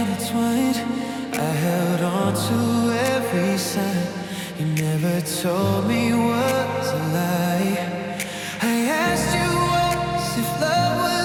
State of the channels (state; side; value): identical; both; correlation 1.00